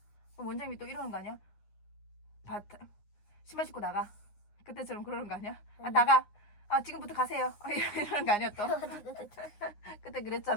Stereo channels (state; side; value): late; right; 9.7 ms